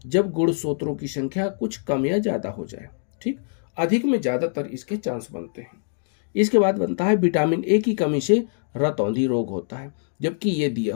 जब गुणसूत्रों की संख्या कुछ कम या ज्यादा हो जाए। ठीक, अधिक में ज्यादातर इसके चांस बनते हैं। इसके बाद बनता है विटामिन ए की कमी से रतौंधी रोग होता है, जबकि ये दिया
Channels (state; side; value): silent; right; digital silence